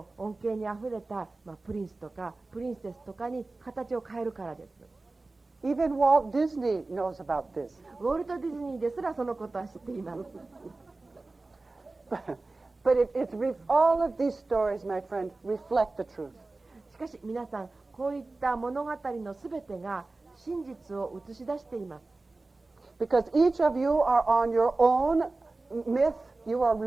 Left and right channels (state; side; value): quieter; left; 3.3 dB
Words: 恩恵にあふれた、プリンスとかプリンセスとかに形を変えるからです。Even Walt Disney knows about this. ウォルト・ディズニーですらそのことは知っています。But all of these stories, my friend, reflect the truth. しかし皆さん、こういった物語のすべてが真実を映し出しています。Because each of you are on your own myth, you are